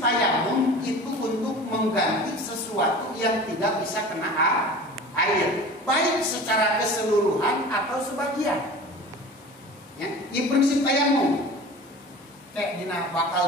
itu untuk mengganti sesuatu yang tidak bisa kena air, baik secara keseluruhan atau sebagian. Ya, ini prinsip tayamum. Dina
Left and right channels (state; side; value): normal; both; correlation 0.38